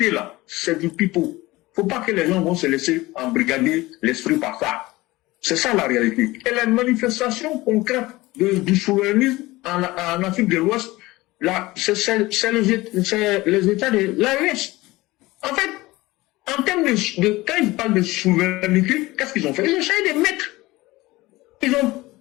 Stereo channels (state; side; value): quieter; right; 19.8 dB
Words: c'est du pipeau. Faut pas que les gens vont se laisser embrigader l'esprit par ça. C'est ça la réalité. Et la manifestation concrète du souverainisme en Afrique de l'Ouest, là, c'est les États de l'AES. En fait, en termes quand ils parlent de souveraineté, qu'est-ce qu'ils ont fait? Ils ont essayé de mettre. Ils ont